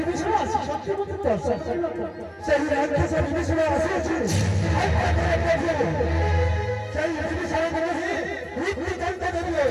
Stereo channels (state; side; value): identical; both; correlation 1.00